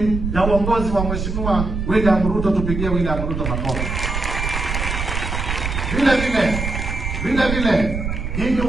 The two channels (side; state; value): right; noise; rumble, 3 dB below the sound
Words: ya uongozi wa Mheshimiwa William Ruto. Tupigie William Ruto makofi. Vile vile nyinyi